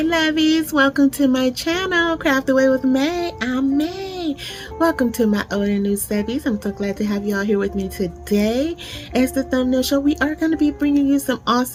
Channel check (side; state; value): both; identical; correlation 1.00